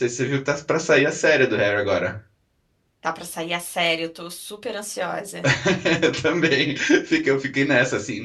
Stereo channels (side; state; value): both; identical; correlation 1.00